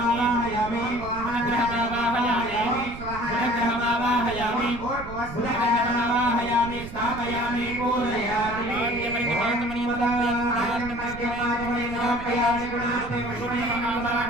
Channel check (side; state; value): right; noise; rumble, 12 dB below the sound